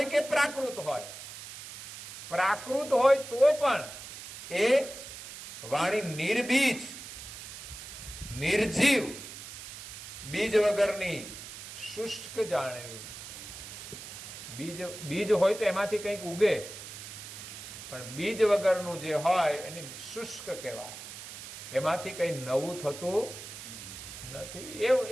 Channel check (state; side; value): noise; right; hiss, 12 dB below the sound